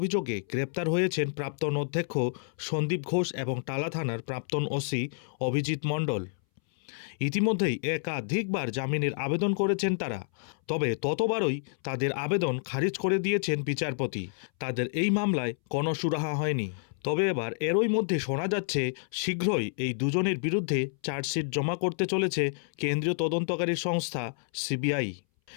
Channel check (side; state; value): right; silent; 59 dB below the other